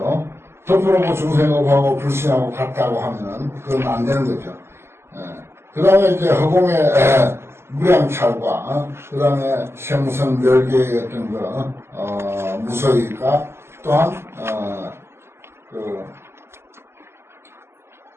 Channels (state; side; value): late; left; 0.12 ms